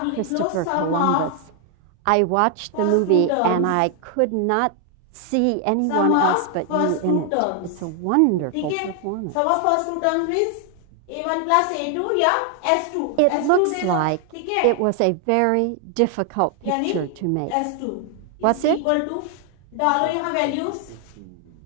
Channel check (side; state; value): both; different; correlation 0.00